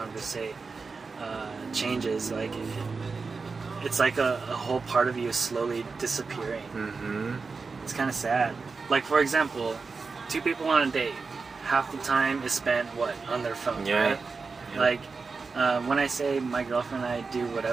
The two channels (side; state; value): left; quieter; 4.5 dB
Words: changes. Like, it's like a whole part of you is slowly disappearing. It's kind of sad. Like, for example, 2 people on a date, half the time is spent, on their phone, right? Yeah. Like, when I say my girlfriend and I do